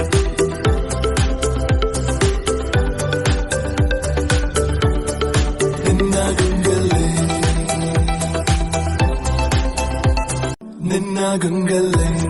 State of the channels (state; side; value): identical; both; correlation 1.00